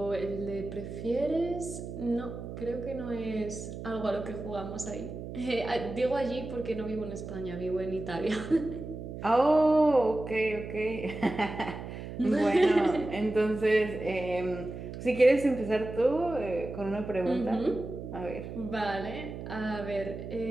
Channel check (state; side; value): noise; right; hum, 9 dB below the sound